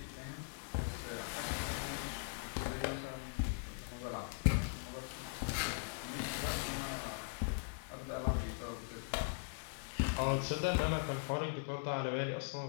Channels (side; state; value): right; silent; digital silence